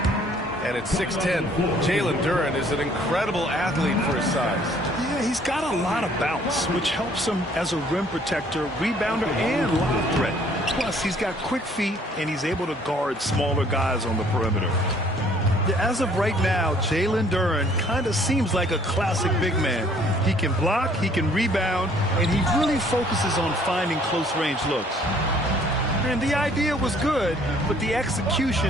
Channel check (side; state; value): both; normal; correlation 0.59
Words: And it's 6-10. Jalen Duren is an incredible athlete for his size. Yeah, he's got a lot of bounce, which helps him as a rim protector, rebounder, and lob threat. Plus, he's got quick feet, and he's able to guard smaller guys on the perimeter. As of right now, Jalen Duren kind of seems like a classic big man. He can block, he can rebound, and he really focuses on finding close-range looks. And the idea was good, but the